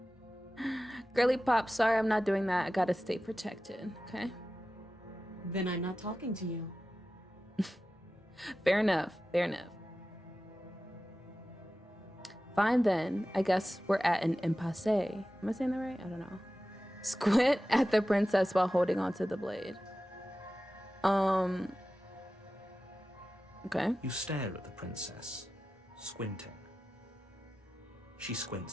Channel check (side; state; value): both; normal; correlation 0.94